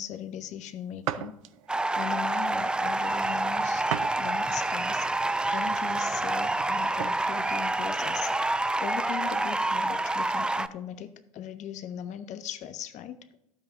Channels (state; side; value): normal; both; correlation 0.83